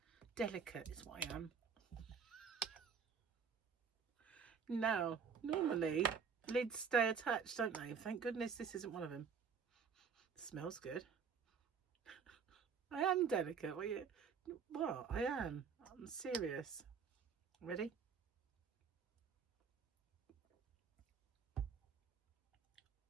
Delicate is what I am. Now, normally lids stay attached, don't they? Thank goodness this isn't one of them. Smells good. I am delicate. What? I am. I'm serious. Ready?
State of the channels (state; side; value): quieter; left; 6.3 dB